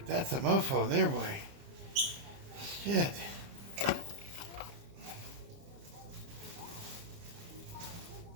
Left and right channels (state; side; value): late; left; 30 ms